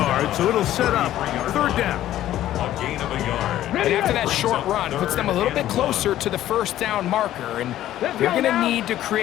so it'll set up 3rd down. A gain of a yard. And after that short run, puts them a little bit closer to the 1st down marker, and they're going to need to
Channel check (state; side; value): quieter; right; 13.1 dB